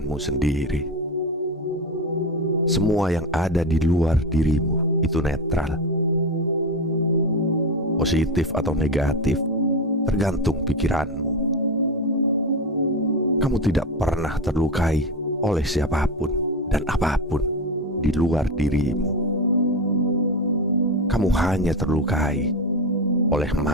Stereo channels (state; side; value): normal; both; correlation 0.18